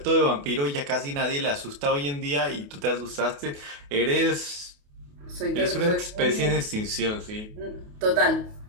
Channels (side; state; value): left; late; 28 ms